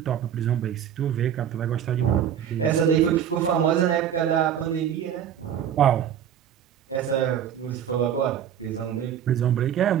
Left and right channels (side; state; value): left; quieter; 9.3 dB